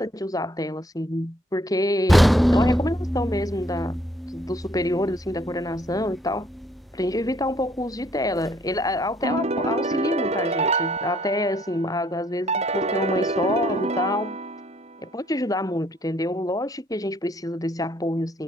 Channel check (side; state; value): both; normal; correlation 0.66